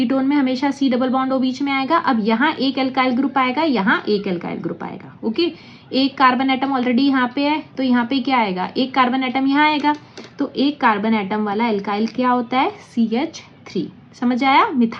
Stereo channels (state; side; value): identical; both; correlation 1.00